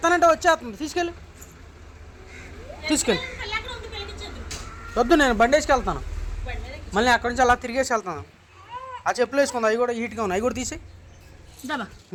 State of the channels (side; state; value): both; identical; correlation 1.00